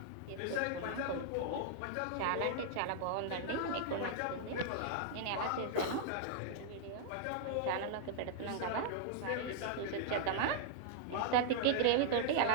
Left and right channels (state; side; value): different; both; correlation -0.01